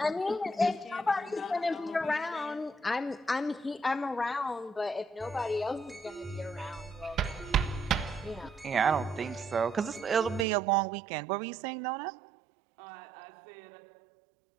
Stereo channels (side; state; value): left; drops out; at 10.5 s